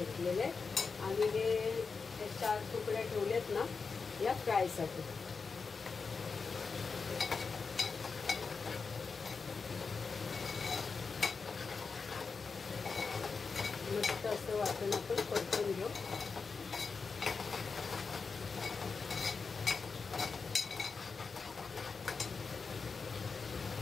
आहे. आणि हे 4 तुकड्या ठेवलेत ना या फ्रायसाठी. मस्त असं वाटण आपण परतून घेऊ.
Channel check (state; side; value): quieter; right; 4.8 dB